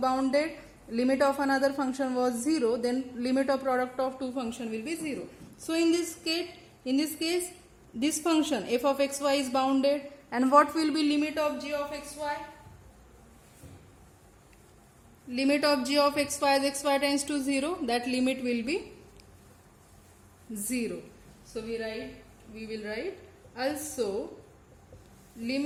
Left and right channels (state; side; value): identical; both; correlation 1.00